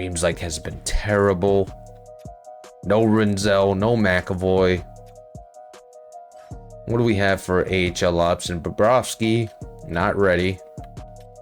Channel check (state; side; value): identical; both; correlation 1.00